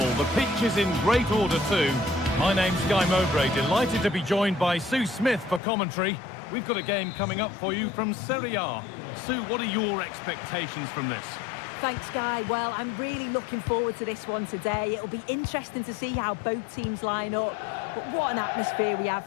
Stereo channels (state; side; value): drops out; right; at 5.6 s